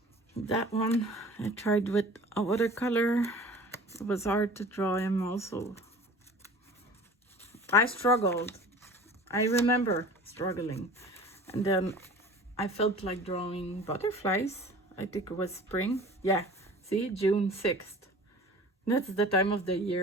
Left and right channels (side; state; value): both; normal; correlation 0.43